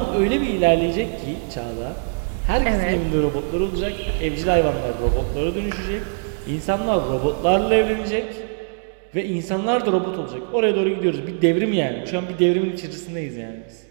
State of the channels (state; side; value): silent; left; digital silence